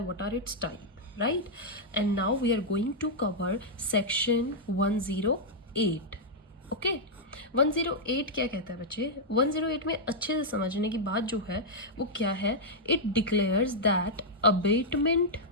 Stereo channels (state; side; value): normal; both; correlation -0.06